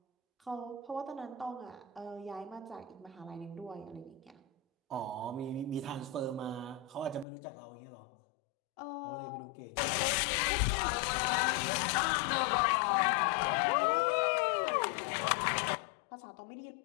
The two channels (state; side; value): drops out; right; at 7.2 s